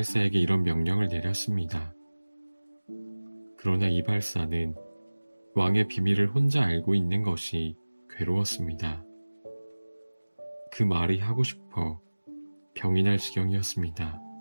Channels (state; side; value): inverted; both; correlation -1.00